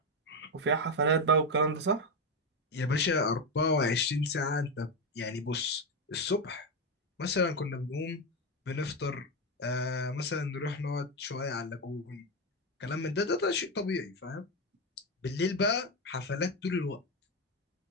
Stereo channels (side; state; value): both; normal; correlation 0.10